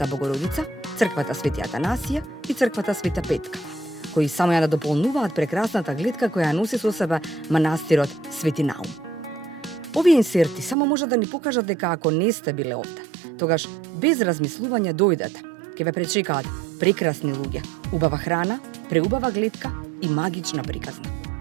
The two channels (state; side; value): drops out; left; at 10.8 s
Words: Богородица, црквата Свети Атанасија и црквата Света Петка, кои само ја да дополнуваат прекрасната гледка која носи со себе манастирот Свети Наум. Овие инсерти само може да ни покажат дека ако не сте биле овде, тогаш без размислување дојдете, ќе ве пречекаат прекрасни луѓе, убава храна, преубава гледка и магична приказна.